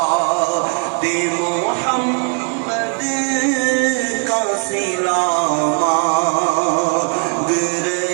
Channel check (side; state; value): left; quieter; 34.9 dB